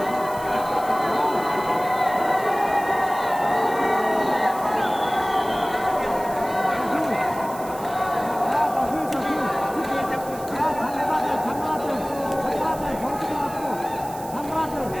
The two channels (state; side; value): noise; right; hiss, 17 dB below the sound